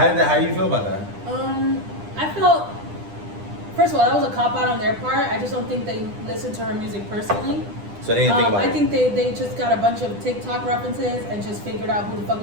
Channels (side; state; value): left; late; 10 ms